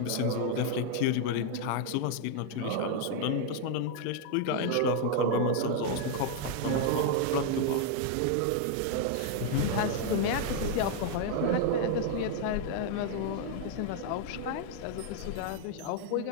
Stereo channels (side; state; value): both; different; correlation 0.00